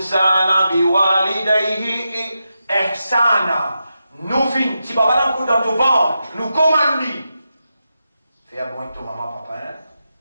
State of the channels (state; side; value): inverted; both; correlation -0.88